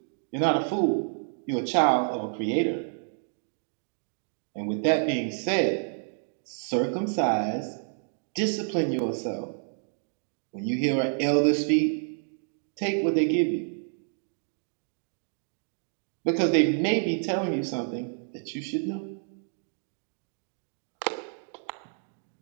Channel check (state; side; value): silent; left; 57 dB below the other